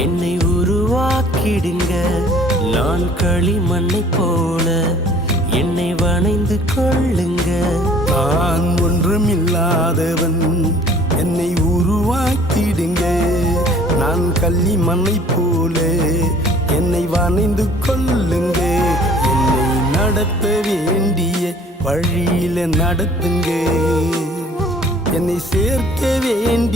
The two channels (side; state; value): both; normal; correlation 0.53